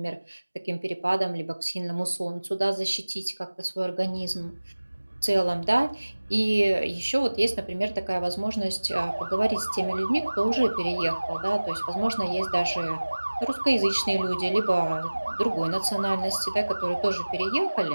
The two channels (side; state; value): both; inverted; correlation -1.00